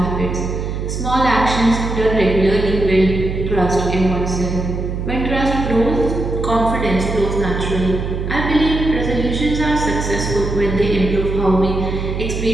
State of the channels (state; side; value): noise; right; hum, 4 dB below the sound